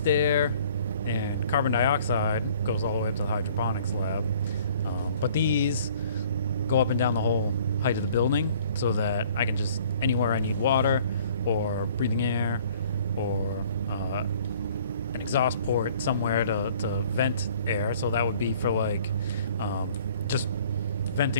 air, and carbon dioxide goes all the way up to the hydroponics lab. But these go up and down the whole height of the building so that I can just, anywhere I need water or breathing air or an exhaust port somewhere to vent air. So that would be for like just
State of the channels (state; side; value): inverted; both; correlation -0.55